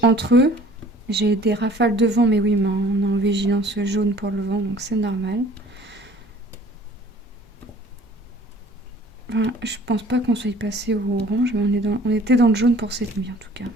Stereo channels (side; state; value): both; normal; correlation 0.51